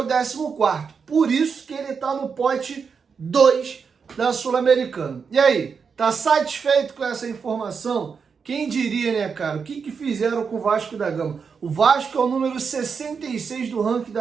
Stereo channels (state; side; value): quieter; left; 5.9 dB